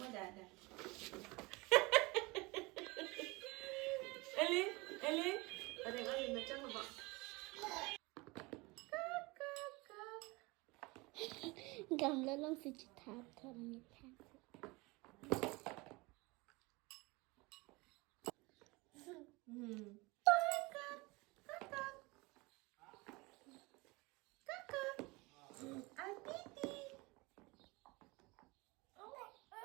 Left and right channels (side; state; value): left; quieter; 24.5 dB